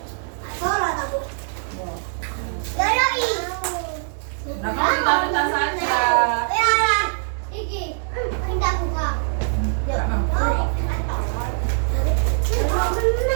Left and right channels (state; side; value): silent; left; 63 dB below the other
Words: Nah, kamu ditaruh tas saja.